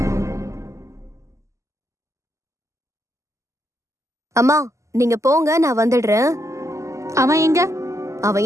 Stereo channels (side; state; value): left; late; 0.15 ms